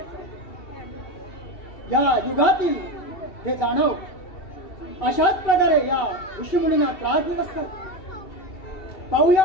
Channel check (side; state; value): right; late; 2.7 ms